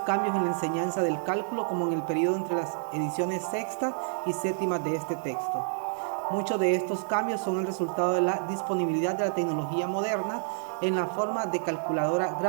cambios en la enseñanza del cálculo como en el periodo entre las ediciones sexta y séptima de este texto. Muchos de estos cambios son el resultado de la disponibilidad de la tecnología moderna en la forma de calculadora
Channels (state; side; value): silent; left; digital silence